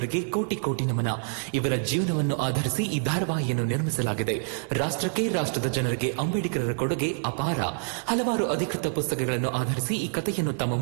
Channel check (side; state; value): left; silent; digital silence